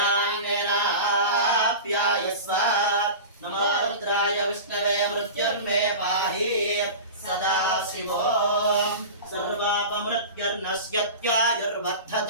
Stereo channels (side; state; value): both; inverted; correlation -0.31